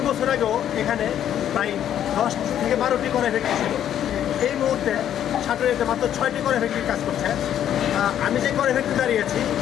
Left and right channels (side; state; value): right; quieter; 10.4 dB